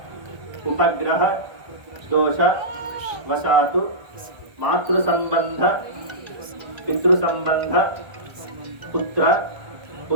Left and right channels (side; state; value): left; late; 1.2 ms